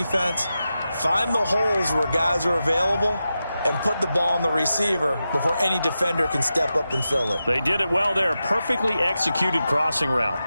find the holes where guys are available and put the ball on the receiver before any defender can step up and fill it. They did it well there. Perfectly executed crossing route.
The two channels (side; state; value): both; inverted; correlation -0.91